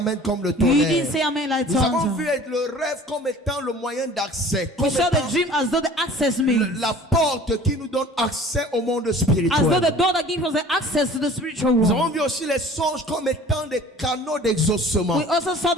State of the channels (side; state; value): both; normal; correlation 0.46